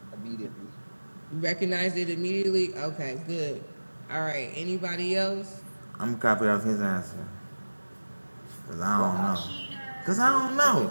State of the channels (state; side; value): inverted; both; correlation -1.00